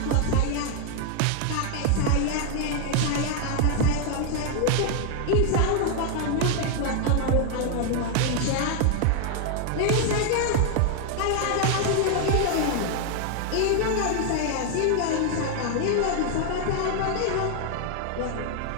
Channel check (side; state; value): both; different; correlation 0.00